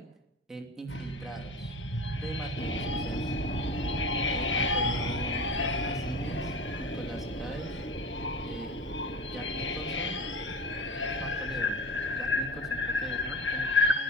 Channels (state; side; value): normal; both; correlation 0.31